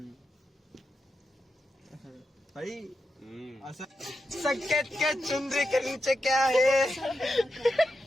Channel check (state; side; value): normal; both; correlation 0.87